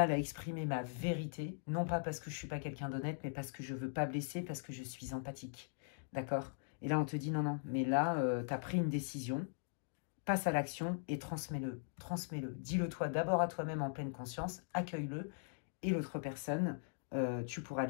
à exprimer ma vérité, non pas parce que je ne suis pas quelqu'un d'honnête, mais parce que je ne veux pas blesser, parce que je suis empathique. D'accord? Et là, on te dit non, non, mais là, tu as pris une décision. passe à l'action et transmets-le. Transmets-le. Dis-le toi d'abord à toi-même en pleine conscience, accueille-le. Et l'autre personne, tu pourras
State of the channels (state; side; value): silent; right; digital silence